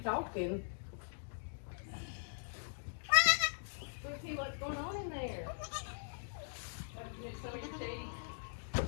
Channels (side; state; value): right; silent; digital silence